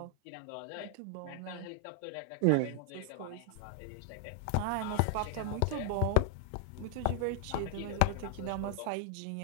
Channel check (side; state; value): both; different; correlation 0.00